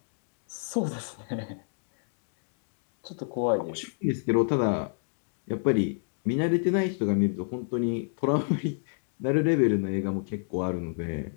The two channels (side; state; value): right; silent; digital silence